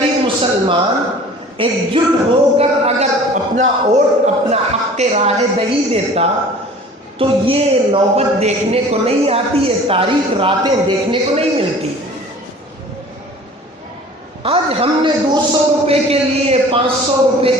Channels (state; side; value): normal; both; correlation 0.46